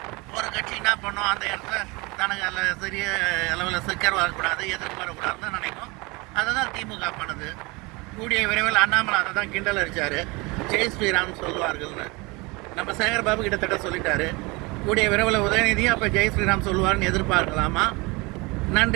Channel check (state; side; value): quieter; left; 25.6 dB